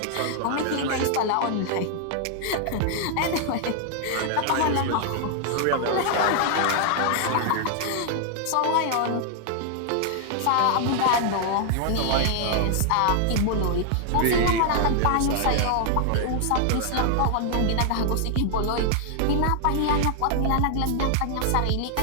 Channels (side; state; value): both; different; correlation 0.00